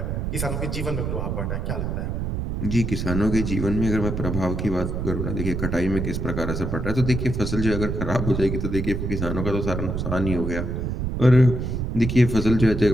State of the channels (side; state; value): right; noise; rumble, 2 dB below the sound